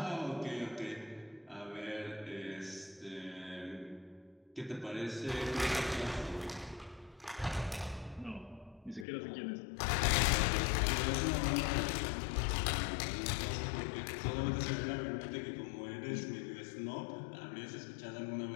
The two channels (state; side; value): drops out; right; at 9.1 s